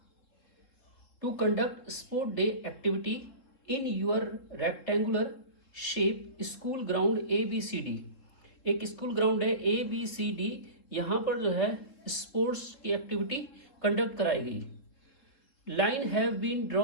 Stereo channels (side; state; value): right; late; 3.7 ms